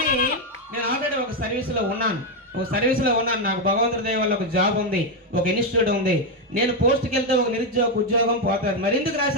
నేను ఆల్రెడీ ఒక సర్వీస్లో ఉన్నాను. నాకు భగవంతుడి దయ వల్ల ఒక జాబ్ ఉంది, ఒక ఇన్స్టిట్యూట్ ఉంది. నేను పోస్ట్కి వెళ్తే ఒక నిరుద్యోగ ఉద్యోగం పోతుంది. మరి ఎందుకు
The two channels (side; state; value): both; normal; correlation 0.05